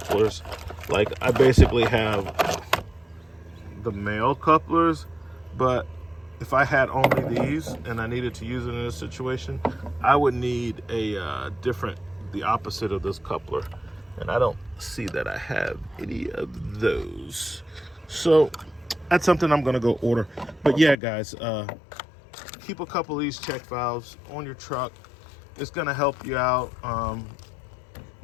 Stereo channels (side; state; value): right; drops out; at 21.0 s